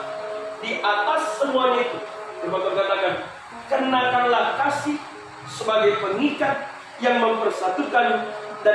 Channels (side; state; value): both; identical; correlation 1.00